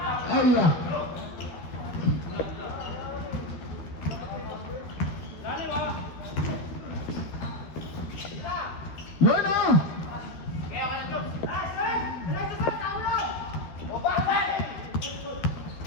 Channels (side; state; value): right; late; 12 ms